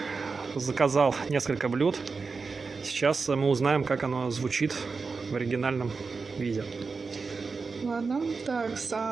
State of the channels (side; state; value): left; quieter; 4.6 dB